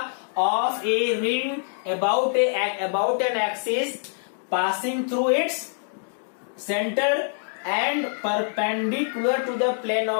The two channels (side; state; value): right; silent; 62 dB below the other